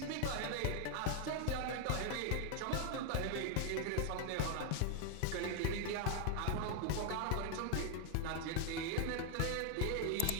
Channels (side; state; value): both; different; correlation 0.01